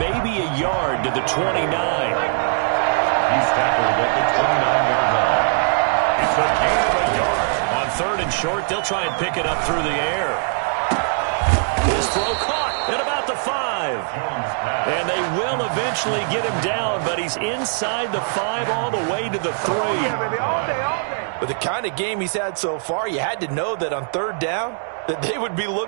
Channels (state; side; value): silent; left; 65 dB below the other